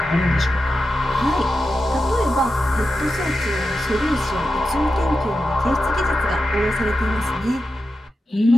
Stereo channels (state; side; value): normal; both; correlation 0.90